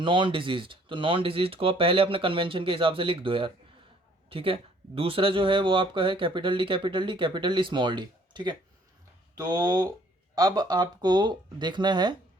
डिजीज्ड। तो नॉन डिजीज्ड को आप पहले अपने कन्वेंशन के हिसाब से लिख दो यार, ठीक है। दूसरा जो है वो आपका है capital D capital D capital D small D, ठीक है। तो अब आपको देखना है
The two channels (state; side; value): normal; both; correlation 0.60